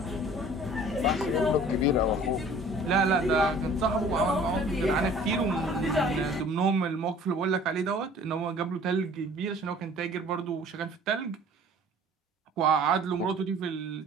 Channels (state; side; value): normal; both; correlation 0.50